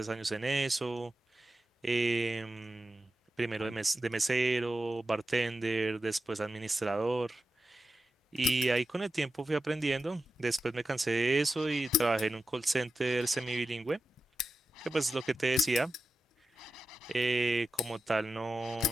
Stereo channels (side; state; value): both; normal; correlation 0.91